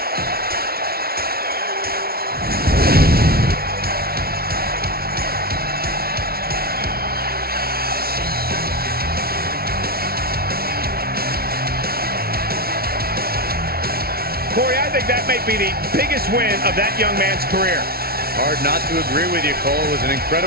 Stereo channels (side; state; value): left; late; 0.44 ms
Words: might be the biggest win of that young man's career. Hard not to agree with you, Cole. It was an